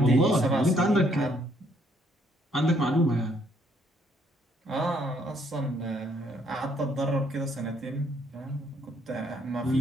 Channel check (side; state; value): both; normal; correlation 0.68